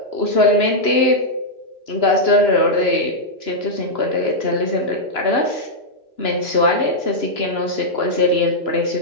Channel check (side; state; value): right; late; 2.9 ms